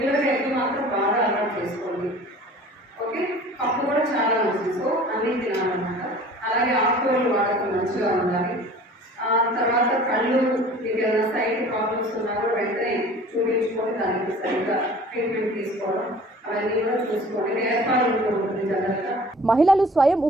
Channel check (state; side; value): normal; both; correlation 0.46